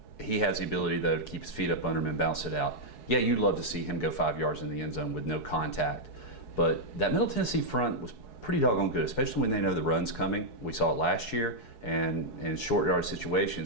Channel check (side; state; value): right; late; 4.7 ms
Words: he has the ability, though, to keep his feet up under him and bounce it out. Yeah, you'd love to see him go 5 yards in the end zone with no contact. But that Middle Tennessee front was pretty doggone good, especially when they know the run's coming. We saw it last year, and in short yard